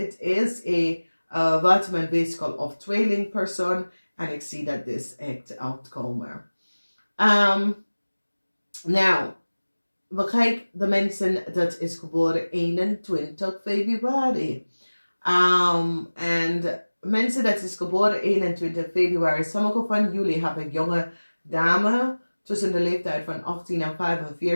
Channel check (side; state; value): both; inverted; correlation -1.00